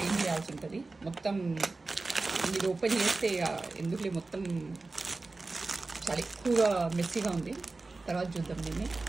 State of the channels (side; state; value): left; quieter; 3.5 dB